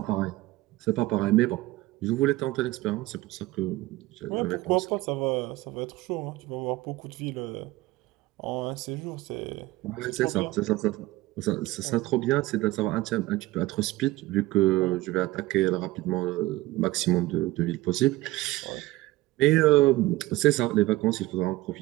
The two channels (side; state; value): left; quieter; 18.5 dB